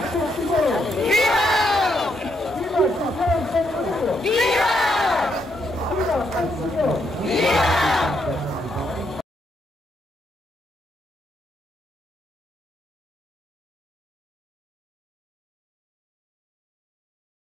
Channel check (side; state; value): both; normal; correlation 0.77